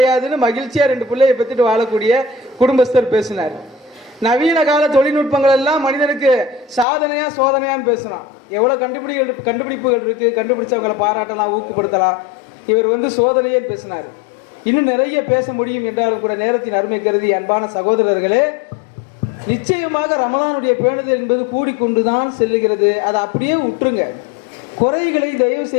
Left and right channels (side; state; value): right; drops out; at 6.9 s